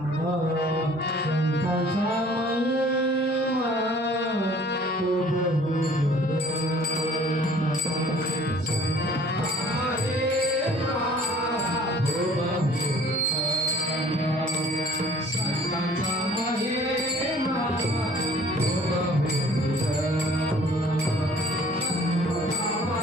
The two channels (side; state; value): both; normal; correlation 0.52